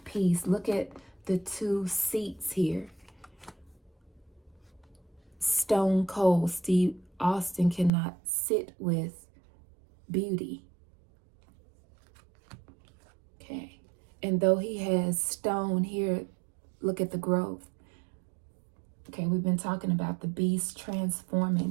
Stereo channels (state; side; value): drops out; left; at 7.9 s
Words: peace. Look at the two seats here. Stone cold Steve Austin cannot sit with beauty. Okay. And though he has stone here, look at the growth. Okay, we've been talking about the beast